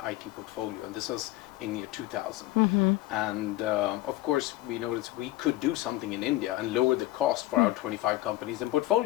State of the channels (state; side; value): quieter; right; 16.9 dB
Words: IT portfolio, and this was in year 2000. And of course, we noticed we could do something in India and lower the cost for our 25 companies in